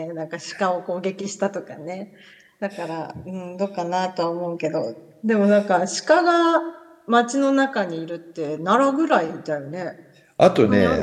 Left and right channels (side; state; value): both; identical; correlation 1.00